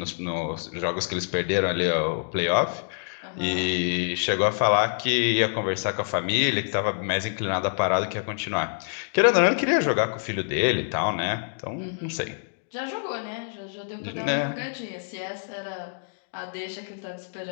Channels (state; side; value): silent; right; digital silence